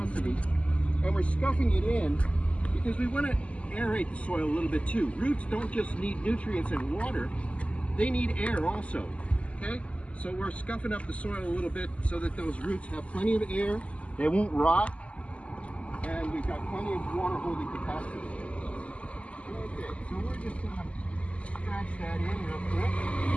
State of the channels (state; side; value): late; right; 0.062 ms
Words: and we're scuffing it in because we want to aerate the soil a little bit too. Roots don't just need nutrients and water, they need air also, okay? So we're scuffing up the soil a little bit so that those roots have plenty of air, they won't rot, and we've got plenty of water holding capacity. Okay, so we're just gonna scratch that in real quick.